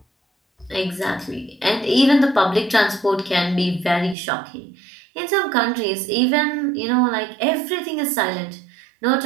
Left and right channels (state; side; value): drops out; left; at 4.2 s